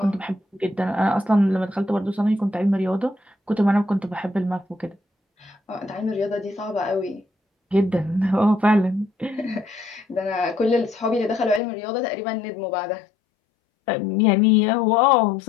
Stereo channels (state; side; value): drops out; right; at 11.6 s